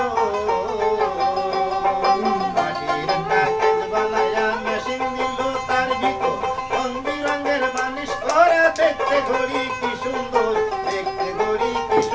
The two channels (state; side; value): identical; both; correlation 1.00